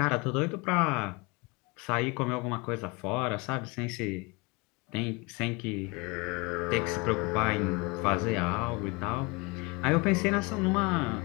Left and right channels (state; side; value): quieter; right; 27.1 dB